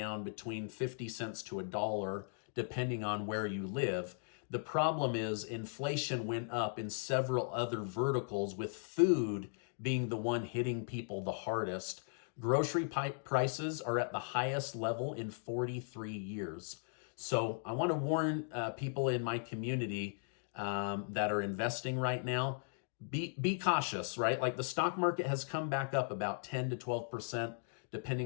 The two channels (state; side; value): silent; right; digital silence